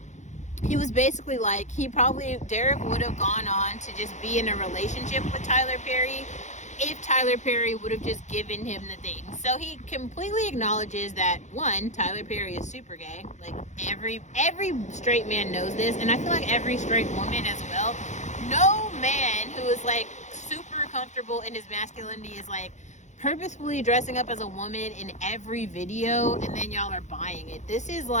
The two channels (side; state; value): right; late; 0.34 ms